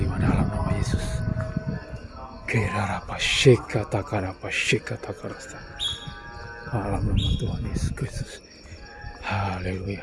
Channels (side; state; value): both; identical; correlation 1.00